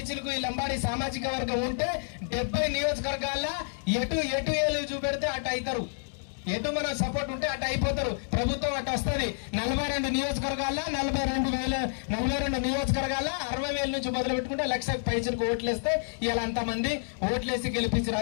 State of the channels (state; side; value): silent; right; digital silence